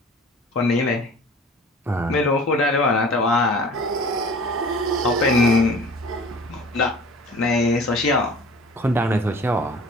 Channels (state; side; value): normal; both; correlation 0.45